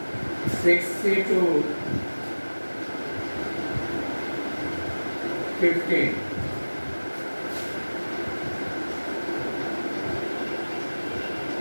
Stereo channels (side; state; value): both; inverted; correlation -1.00